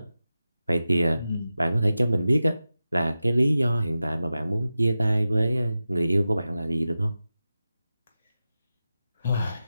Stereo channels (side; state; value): both; inverted; correlation -0.94